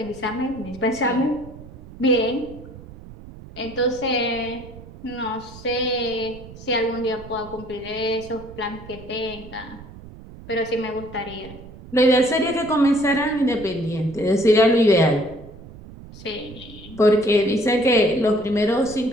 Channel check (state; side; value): noise; right; rumble, 17 dB below the sound